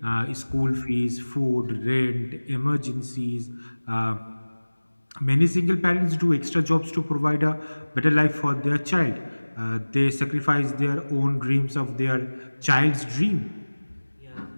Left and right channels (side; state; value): both; inverted; correlation -1.00